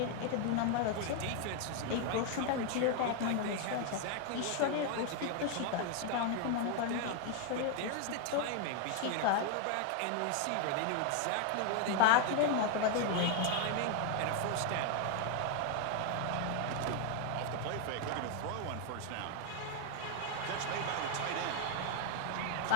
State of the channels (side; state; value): both; different; correlation 0.00